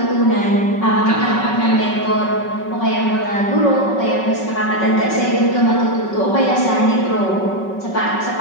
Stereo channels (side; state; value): right; late; 5.3 ms